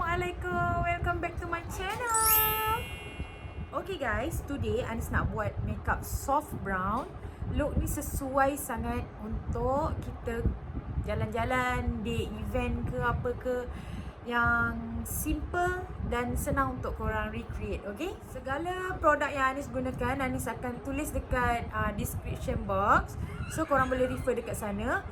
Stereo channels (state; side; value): identical; both; correlation 1.00